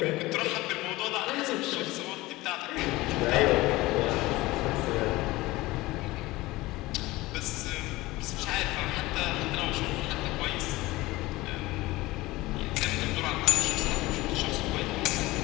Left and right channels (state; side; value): quieter; right; 19.7 dB